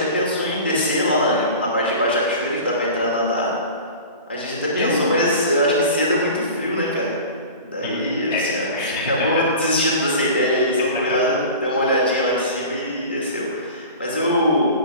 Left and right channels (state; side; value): inverted; both; correlation -0.36